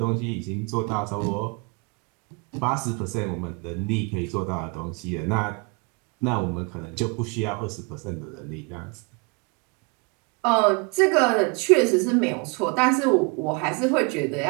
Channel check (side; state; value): left; quieter; 31.1 dB